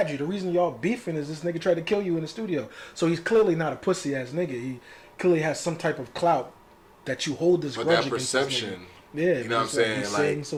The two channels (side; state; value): both; identical; correlation 1.00